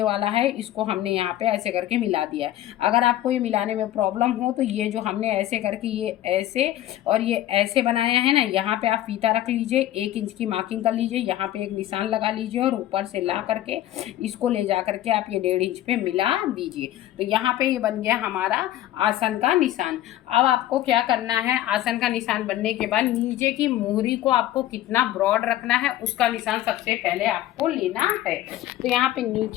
वाला है इसको हमने यहाँ पे ऐसे करके मिला दिया है। अगर आपको ये मिलाने में प्रॉब्लम हो तो ये जो हमने ऐसे करके ये ऐसे और ये ऐसे बनाया है ना, यहाँ पे आप फीता रख लीजिए, 1 इंच की मार्किंग कर लीजिए, यहाँ पे एक निशान लगा लीजिए और ऊपर से ला करके इसको ले जा करके आप ये 1.5 इंच पे मिला दीजिए। तो यहाँ पे ये बन गया हमारा आसन का निशान। अब आपको क्या करना है, आसन का निशान बनने के बाद नीचे की मोहरी को आपको कितना ब्रॉड रखना है उसका निशान सबसे पहले आपको लेना है। तो यहाँ पे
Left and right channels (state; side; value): quieter; right; 13.6 dB